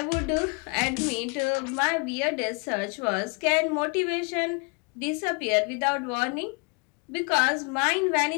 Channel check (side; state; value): right; quieter; 33.2 dB